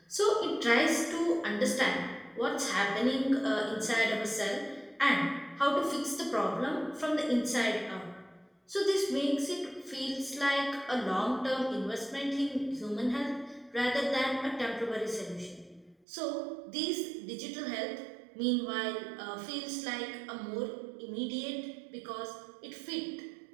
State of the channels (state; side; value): drops out; left; at 16.0 s